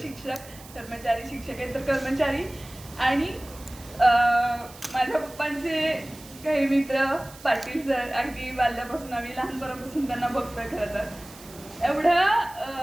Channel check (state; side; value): noise; right; hiss, 19 dB below the sound